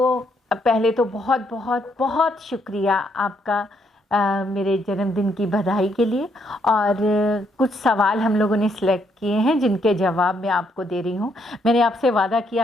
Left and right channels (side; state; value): both; normal; correlation 0.74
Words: तो बहुत बहुत बहुत शुक्रिया आपका मेरे जन्मदिन की बधाई के लिए। और कुछ सवाल हम लोगों ने सिलेक्ट किए हैं जिनके जवाब मैं आपको दे रही हूँ। मैंने आपसे वादा